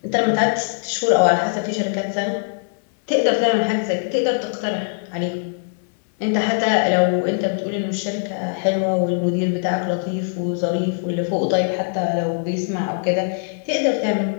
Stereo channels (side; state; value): right; silent; 60 dB below the other